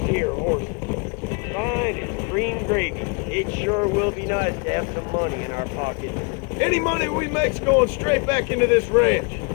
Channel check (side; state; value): right; quieter; 33.1 dB